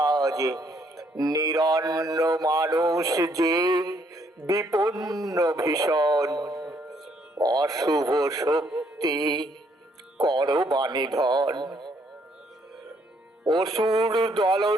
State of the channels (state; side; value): normal; both; correlation 0.69